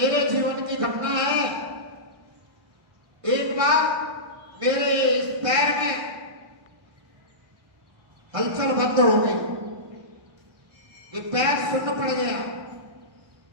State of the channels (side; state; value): left; late; 1.6 ms